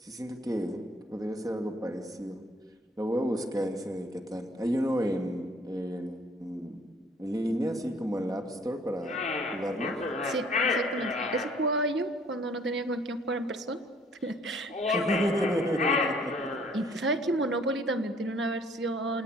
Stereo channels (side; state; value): both; normal; correlation 0.59